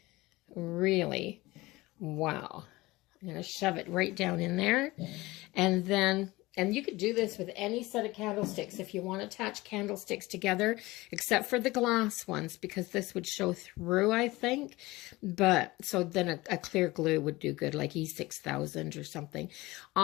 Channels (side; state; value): right; quieter; 20.3 dB